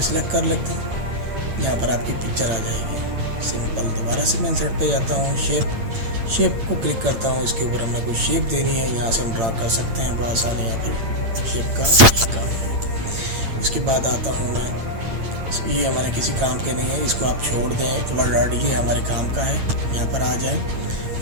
सिलेक्ट कर लेते हैं, यहाँ पर आपकी पिक्चर आ जाएगी सिंपल। दोबारा से मैं इंसर्ट पे जाता हूँ, शेप को क्लिक करता हूँ। इसके ऊपर हमने कोई शेप देनी है, यहाँ से हम ड्रा कर सकते हैं बआसानी। यहाँ पर शेप का काम है। इसके बाद आता हूँ मैं, ये हमारे किसी काम के नहीं है, इसको आप छोड़ दें। वर्ड आर्ट ये हमारे काम का है। यहाँ पर आ जाए,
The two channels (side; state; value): left; late; 8.8 ms